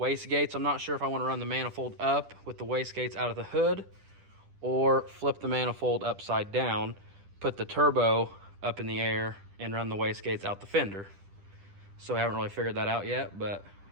I'm not sure if I want to run the manifold up with the wastegates out of the hood or flip the manifold upside down, put the turbo up in the air, and run the wastegates out the fender. So I haven't really figured that out yet, but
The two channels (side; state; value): left; late; 10 ms